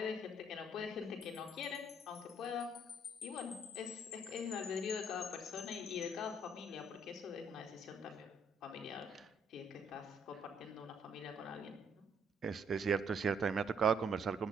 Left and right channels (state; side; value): normal; both; correlation 0.66